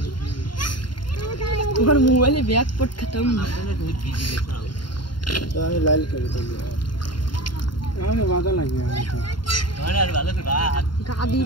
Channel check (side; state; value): right; late; 0.72 ms